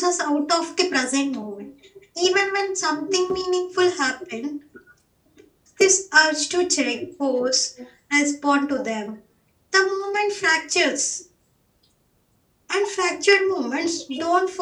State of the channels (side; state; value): both; identical; correlation 1.00